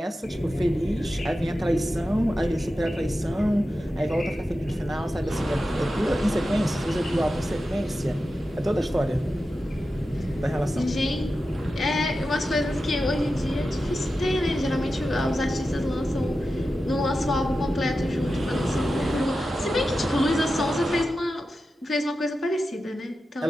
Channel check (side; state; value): both; normal; correlation 0.92